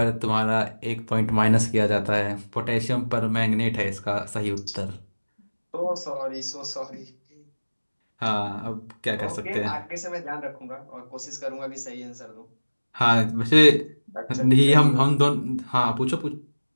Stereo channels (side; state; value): both; inverted; correlation -1.00